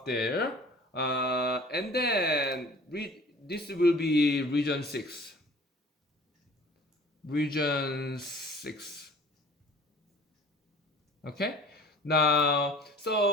there. And then this will be region 6. Region 6. Okay. Now,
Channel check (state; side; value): normal; both; correlation 0.47